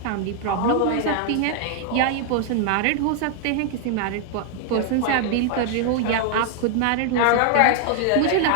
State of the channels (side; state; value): both; different; correlation 0.00